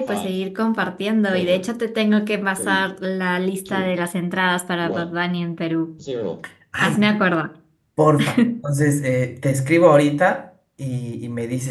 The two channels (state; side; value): identical; both; correlation 1.00